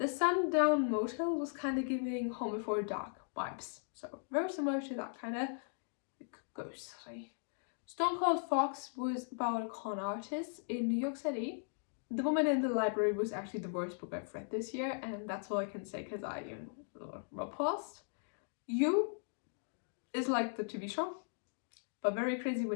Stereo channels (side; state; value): right; silent; digital silence